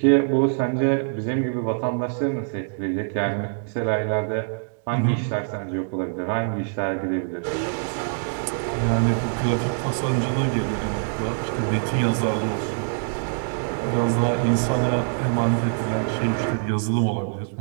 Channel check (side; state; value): left; silent; digital silence